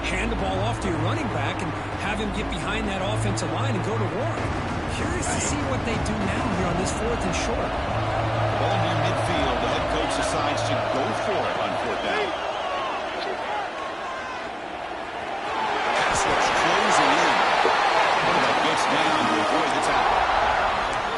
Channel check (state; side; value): identical; both; correlation 1.00